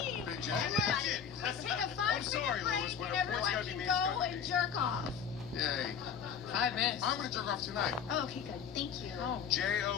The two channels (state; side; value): quieter; right; 7.3 dB